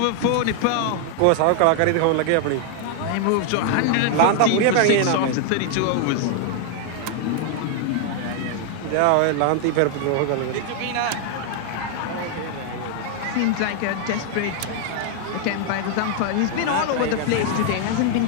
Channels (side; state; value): both; different; correlation 0.00